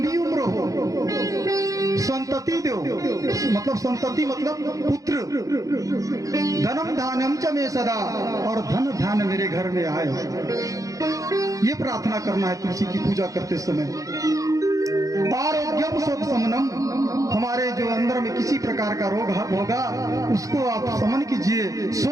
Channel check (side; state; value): left; late; 0.16 ms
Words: उम्र हो, संतति दो, मतलब संतति मतलब पुत्र, धनम धानम च मे सदा, और धन धान मेरे घर में आए। ये प्रार्थना करना है तुलसी की पूजा करते समय। आरोग्यम शोक शमनम, हमारे जो अंदर में किसी प्रकार का रोग होगा उसको आप शमन कीजिए।